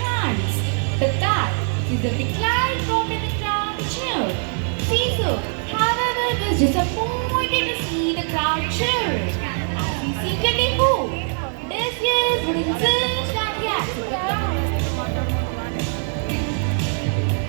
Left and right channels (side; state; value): left; silent; 56 dB below the other